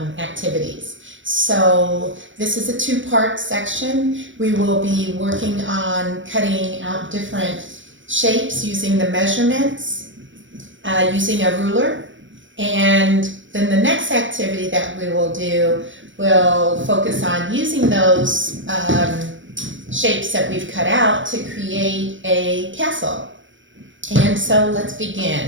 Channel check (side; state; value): left; late; 0.56 ms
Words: activities. So this is a two-part section. We will be working on cutting out different shapes using the measurements, using a ruler, and then the next activity that we will do will focus on using those shapes that we've cut out to create a castle. And so let's